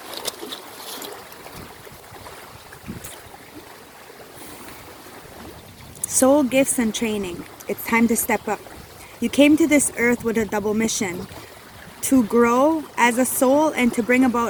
soul gifts and training. It's time to step up. You came to this earth with a double mission: to grow as a soul and to bring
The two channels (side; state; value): both; identical; correlation 1.00